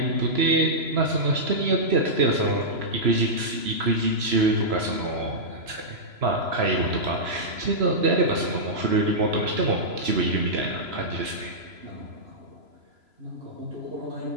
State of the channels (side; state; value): left; late; 3.0 ms